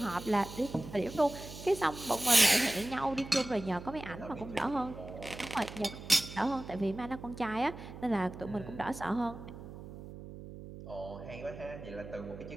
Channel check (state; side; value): noise; right; hum, 13 dB below the sound